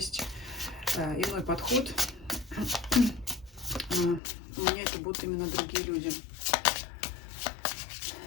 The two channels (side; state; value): right; drops out; at 4.2 s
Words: иной подход. У меня это будут именно другие люди.